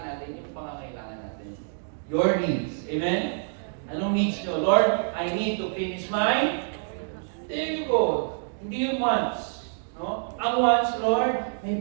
natin, yung pangangailangan natin. Your needs. Amen? Anong needs nyo? Lord, I need to finish my... There you go. Hindi yung wants. No? Ang wants, Lord,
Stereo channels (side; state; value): left; silent; digital silence